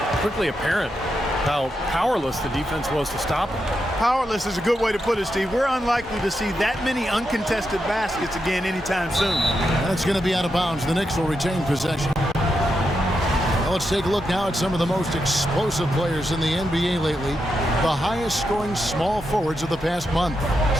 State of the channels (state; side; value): normal; both; correlation 0.85